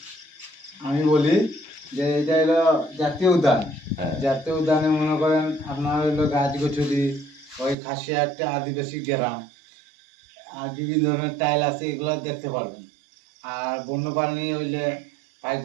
আমি বলি যে এটা হলো জাতীয় উদ্যান। হ্যাঁ। জাতীয় উদ্যানে মনে করেন আপনার হলো গাছগাছালি, ওই খাসিয়া একটা আদিবাসী গ্রাম, আর বিভিন্ন ধরনের টাইল আছে, এগুলো দেখতে পারবেন। আর বন্যপ্রাণী হইলে ভাগ্য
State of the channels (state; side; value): drops out; left; at 7.8 s